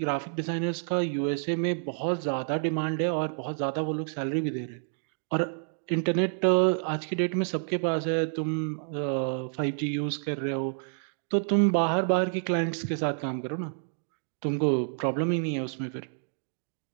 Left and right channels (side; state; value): left; silent; digital silence